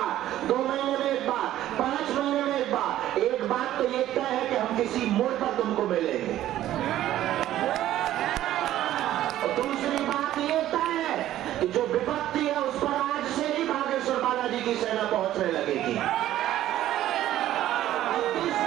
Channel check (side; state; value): left; quieter; 13.2 dB